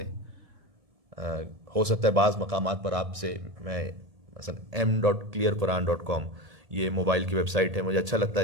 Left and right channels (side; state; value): left; late; 1.8 ms